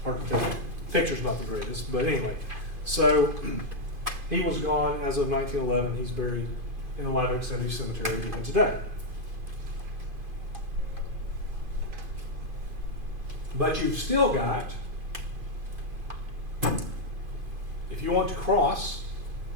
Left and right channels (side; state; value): left; late; 2.5 ms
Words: Hard to tell. Picture's not the greatest, but anyway. So he was gone as of 1911. He's buried in the Live Oak Cemetery even today. But you've still got, if you want to cross